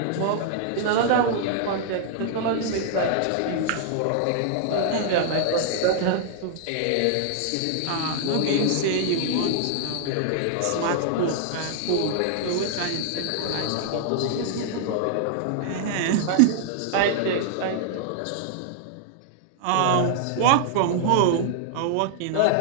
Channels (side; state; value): both; different; correlation -0.01